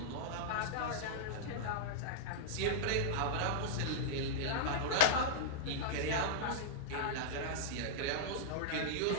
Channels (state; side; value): different; both; correlation -0.02